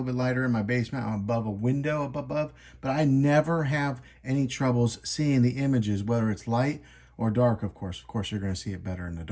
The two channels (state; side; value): identical; both; correlation 1.00